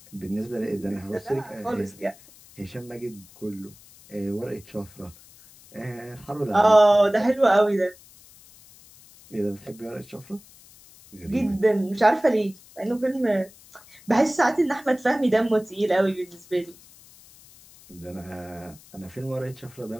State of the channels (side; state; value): left; noise; hiss, 24 dB below the sound